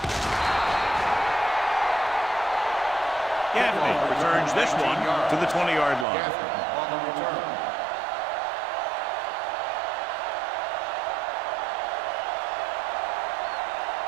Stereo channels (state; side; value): drops out; left; at 6.1 s